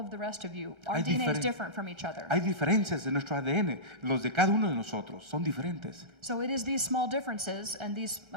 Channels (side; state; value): left; late; 1.3 ms